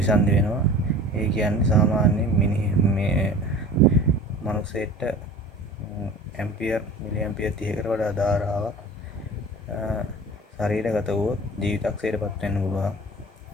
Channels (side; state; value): both; normal; correlation 0.40